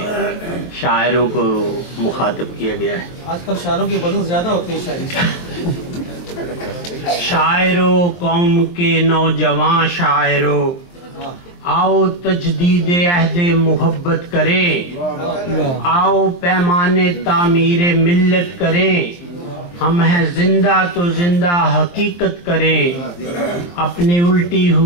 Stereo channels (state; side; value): late; right; 23 ms